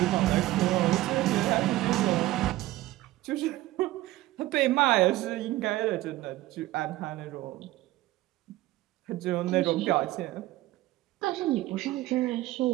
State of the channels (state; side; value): quieter; left; 16.9 dB